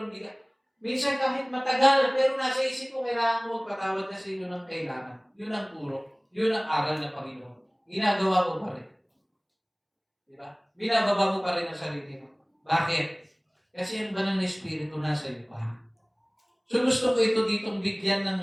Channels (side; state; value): both; identical; correlation 1.00